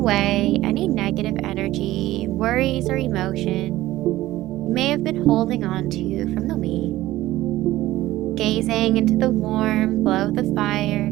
any negative energy, worries, or emotion you may have been holding on to from the week. Gazing into the warm glow of the fire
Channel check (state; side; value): quieter; left; 16.1 dB